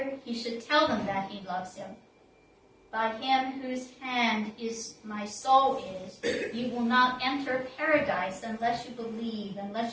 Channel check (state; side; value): identical; both; correlation 1.00